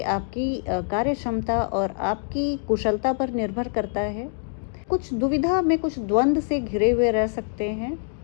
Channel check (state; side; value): silent; right; digital silence